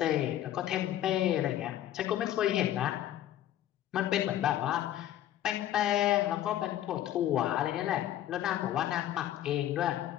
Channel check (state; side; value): quieter; right; 12.5 dB